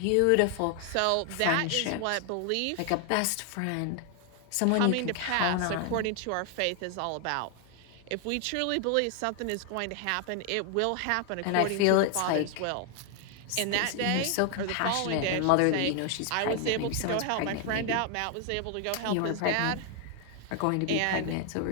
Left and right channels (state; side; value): different; both; correlation 0.00